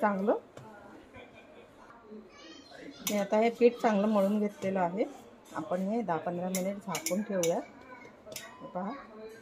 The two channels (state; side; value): identical; both; correlation 1.00